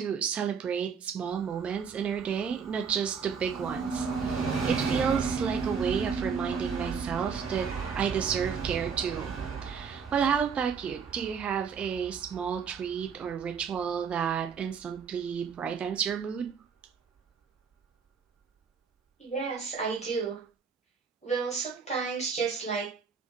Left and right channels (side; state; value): left; quieter; 6.3 dB